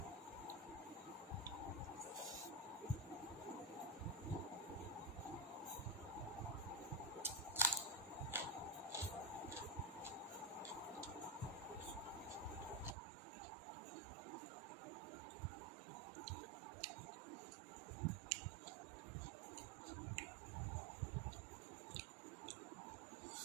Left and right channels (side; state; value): left; drops out; at 13.0 s